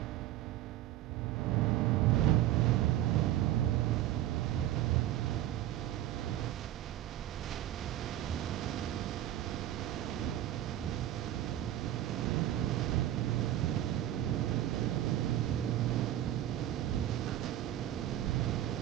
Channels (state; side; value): quieter; left; 12.9 dB